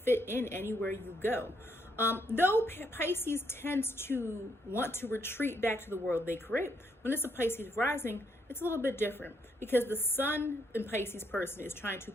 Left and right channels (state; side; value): normal; both; correlation 0.74